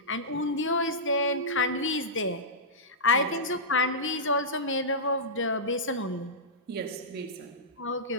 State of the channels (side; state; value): both; normal; correlation -0.15